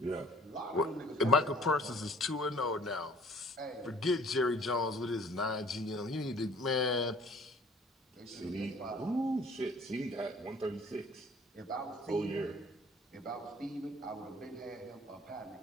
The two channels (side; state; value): both; normal; correlation 0.54